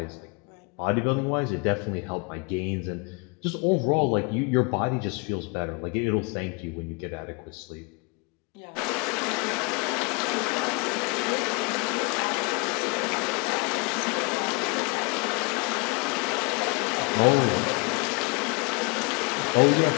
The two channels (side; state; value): right; quieter; 31.5 dB